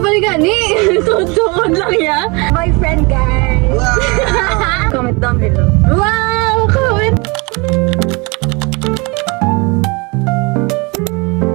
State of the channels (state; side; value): quieter; left; 28.1 dB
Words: gani. Tutuod lang ya. My friend, guys. Wow! Comment down below. Wow! Comment!